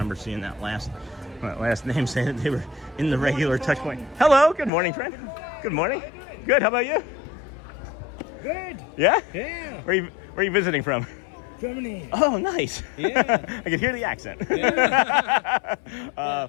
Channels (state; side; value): drops out; right; at 4.7 s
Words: seeing that last name saying that they were in the regular touch point. Hello. Good morning, friend. Good morning. Good. How about you? Good. Yeah? Yeah. Where are you visiting from? Germany. Oh, nice. Yeah. I can hear the accent. Yeah.